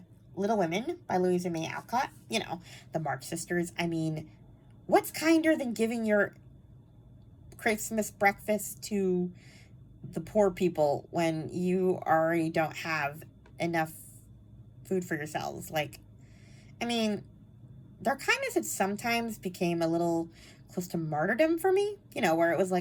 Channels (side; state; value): both; identical; correlation 1.00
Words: Little Women by Louisa May Alcott, the March Sisters. I mean, what's kinder than giving your Christmas breakfast to the poor people when you already don't have enough food for yourselves? Their kindness had sometimes became a little close to martyrdom for me, where it was